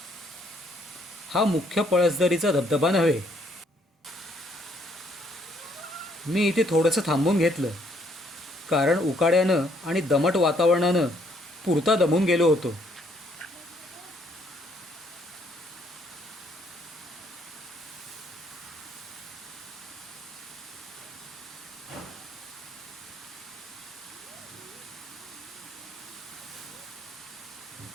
हा मुख्य पळसदरीचा धबधबा नव्हे. मी इथे थोडंसं थांबून घेतलं, कारण उकाड्यानं आणि दमट वातावरणानं पुरता दमून गेलो होतो.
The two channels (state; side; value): normal; both; correlation 0.68